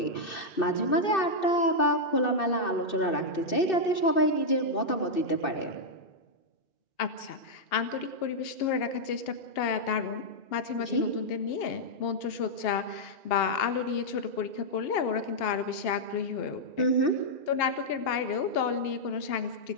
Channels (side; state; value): right; late; 2.8 ms